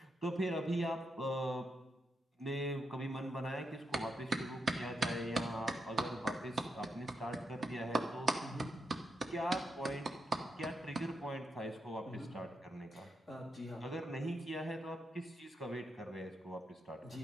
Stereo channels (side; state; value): both; normal; correlation 0.84